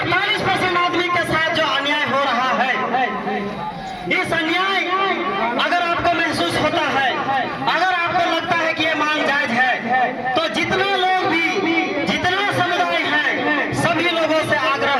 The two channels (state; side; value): identical; both; correlation 1.00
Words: 48% आदमी के साथ जो अन्याय हो रहा है, इस अन्याय अगर आपको महसूस होता है, अगर आपको लगता है कि ये मांग जायज है, तो जितना लोग भी, जितना समुदाय है, सभी लोगों से